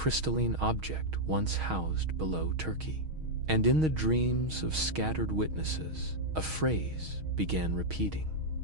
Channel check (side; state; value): left; late; 6.4 ms